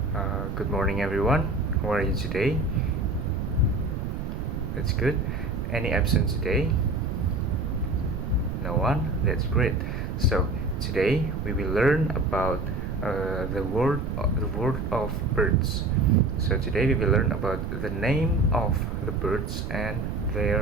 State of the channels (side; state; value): right; noise; rumble, 4 dB below the sound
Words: Good morning, everyone. How are you today? That's good. Any absent today? No one? That's great. So today we will learn about the word of birds. So today we will learn about the name of the birds and